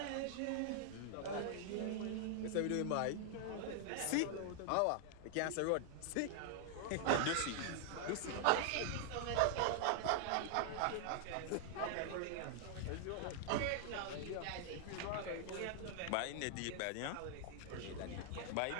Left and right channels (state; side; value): different; both; correlation 0.00